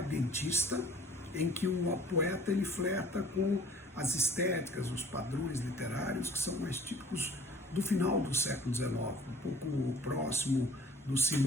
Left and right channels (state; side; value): normal; both; correlation 0.50